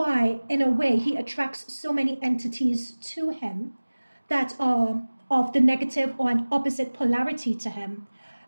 in a way, he attracts so many entities to him that are of the negative or an opposite polarity to him,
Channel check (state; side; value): inverted; both; correlation -1.00